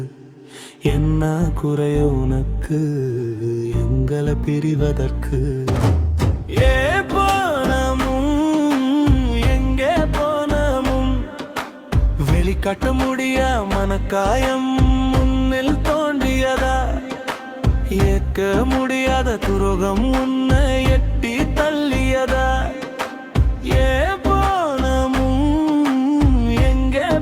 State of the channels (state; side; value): identical; both; correlation 1.00